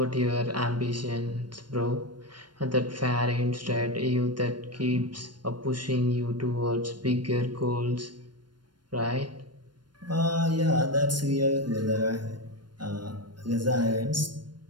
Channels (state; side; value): late; left; 0.71 ms